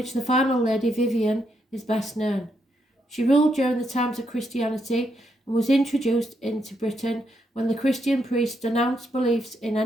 the final lady, Vivian, is best known. She ruled during the times of Christianity and was introduced into Britain when the Christian priests denounced beliefs in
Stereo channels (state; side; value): normal; both; correlation 0.78